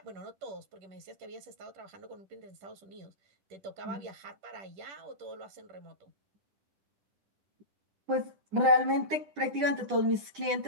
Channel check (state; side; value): late; left; 10 ms